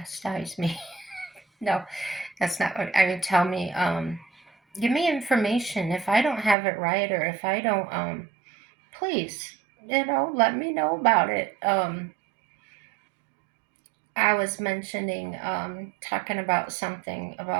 me. No, that's not what I mean. Tell me, give me information if I don't have it right, or if I don't, please, let me know about it. I was mentioning, talking about something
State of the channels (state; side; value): drops out; left; at 6.6 s